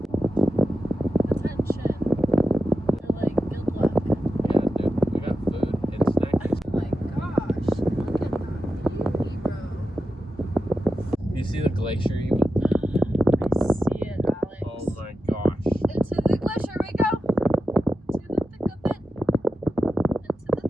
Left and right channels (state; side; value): normal; both; correlation 0.91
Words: You see the glacier you went? I see it, Alex. Oh my gosh. Into the glacier we go. To the thick of it. Into the